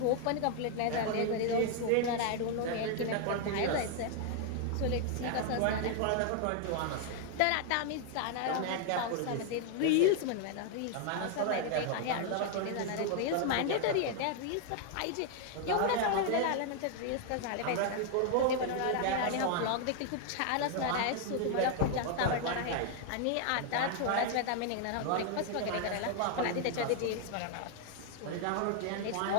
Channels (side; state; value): both; different; correlation 0.00